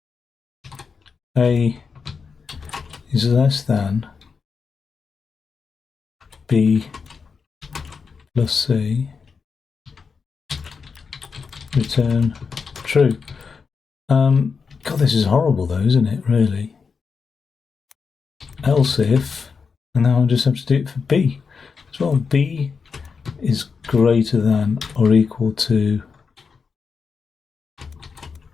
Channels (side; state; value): right; quieter; 5.4 dB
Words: A is less than B plus C, return true. God, this is horrible though, isn't it, really? Else if, and now I just have to do it for B as well. B is greater than or equal to